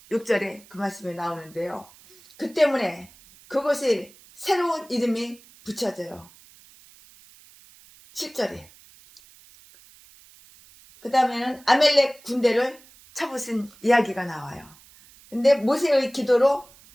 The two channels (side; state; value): right; noise; hiss, 25 dB below the sound